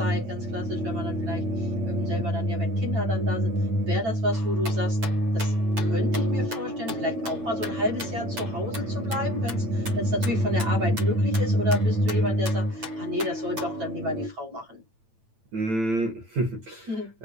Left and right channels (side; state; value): left; late; 8.9 ms